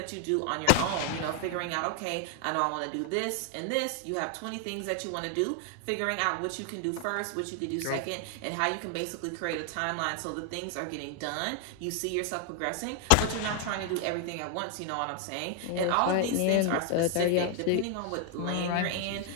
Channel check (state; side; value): different; both; correlation 0.00